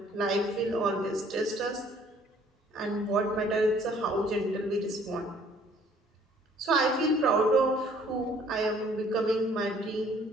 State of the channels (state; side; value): normal; both; correlation 0.59